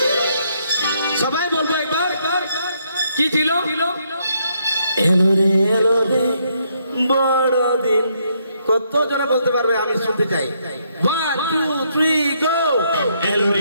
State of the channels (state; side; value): inverted; both; correlation -0.73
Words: সবাই বলবো একবার কি ছিল এলো রে বড়দিন কত জনে বলতে পারবে আমি শুনতে চাই 1 2 3 গো এলো